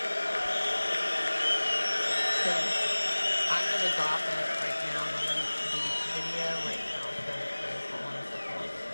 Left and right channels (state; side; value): inverted; both; correlation -1.00